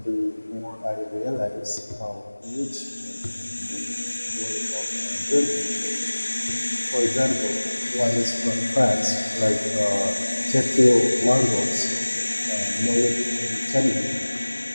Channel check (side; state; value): both; inverted; correlation -1.00